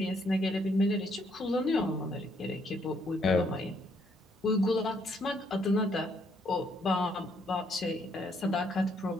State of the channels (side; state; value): both; normal; correlation 0.70